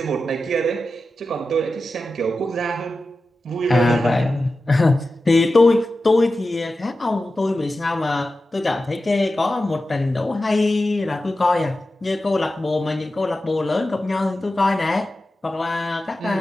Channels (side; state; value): both; normal; correlation 0.93